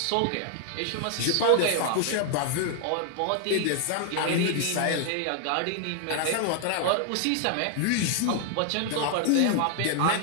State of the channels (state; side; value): different; both; correlation 0.00